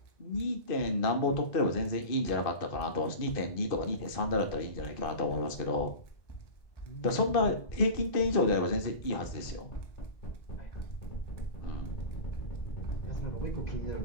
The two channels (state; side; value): late; right; 2.5 ms